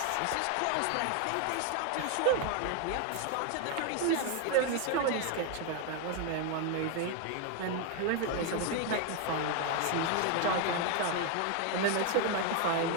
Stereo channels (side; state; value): both; different; correlation 0.01